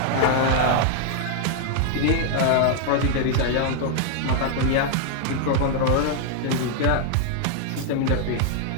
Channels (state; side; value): different; both; correlation 0.00